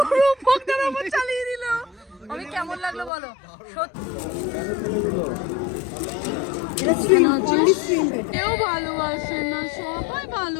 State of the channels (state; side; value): drops out; right; at 3.1 s